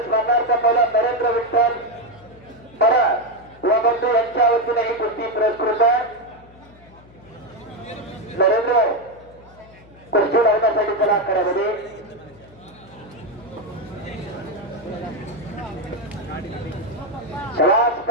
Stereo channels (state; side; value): noise; left; hum, 24 dB below the sound